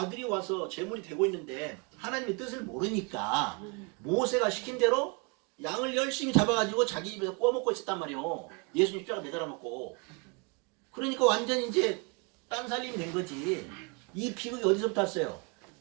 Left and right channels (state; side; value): quieter; left; 31.7 dB